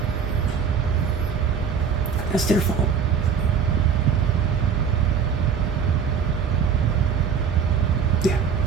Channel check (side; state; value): left; quieter; 6.8 dB